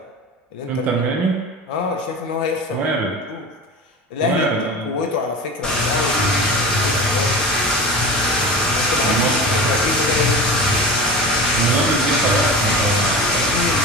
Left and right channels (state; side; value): normal; both; correlation 0.32